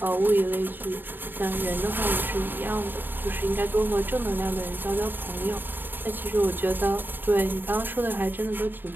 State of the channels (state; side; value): late; left; 0.093 ms